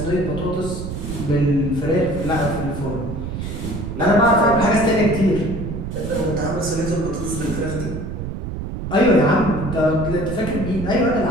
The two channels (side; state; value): right; noise; rumble, 6 dB below the sound